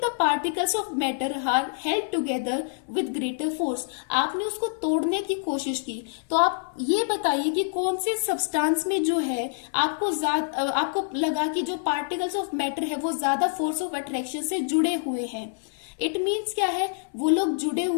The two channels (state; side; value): silent; right; 61 dB below the other